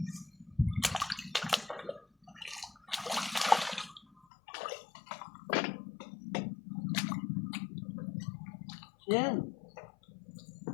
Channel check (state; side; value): drops out; right; at 4.2 s